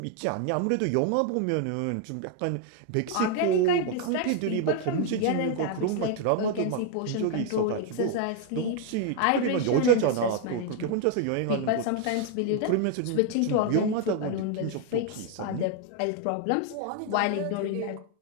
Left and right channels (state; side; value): different; both; correlation 0.00